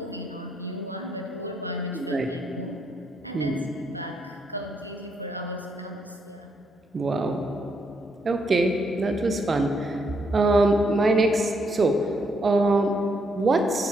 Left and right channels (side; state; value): both; normal; correlation 0.75